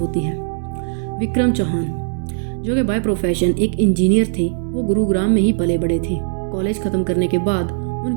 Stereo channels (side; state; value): left; silent; 66 dB below the other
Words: है। विक्रम चौहान, जो कि बाय प्रोफेशन एक इंजीनियर थे, वो गुरुग्राम में ही पले बड़े थे। कॉलेज ख़त्म करने के बाद